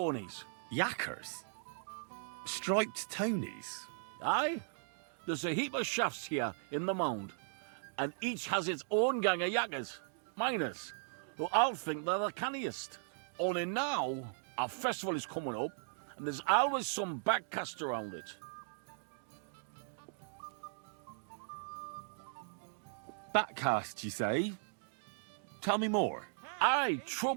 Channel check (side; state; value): left; silent; digital silence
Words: Yackers? Striped Tonys? Aye. There's a heap of shafts here in the mound, and each has its own gang of yackers, miners, who all think they're the canniest. Only now, our festival is coming up, and there's always some backcast around it. Backcast, you say? Tell me more. Aye,